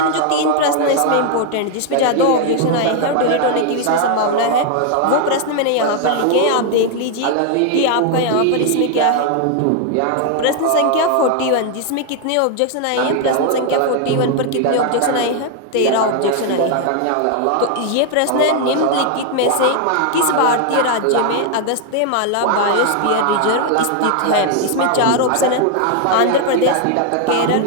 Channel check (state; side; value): different; both; correlation 0.00